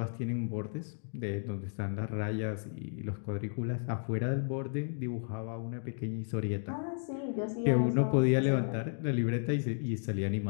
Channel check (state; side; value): silent; right; digital silence